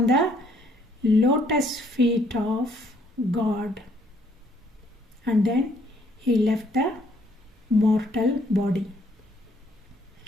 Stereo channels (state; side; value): normal; both; correlation 0.66